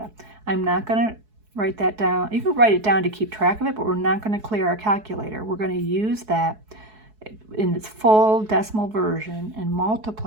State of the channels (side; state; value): left; late; 4.7 ms